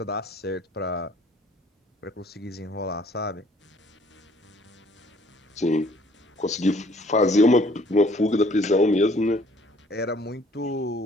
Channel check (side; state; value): both; normal; correlation 0.59